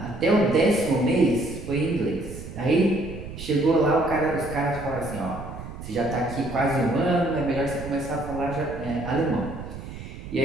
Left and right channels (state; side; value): noise; right; rumble, 11 dB below the sound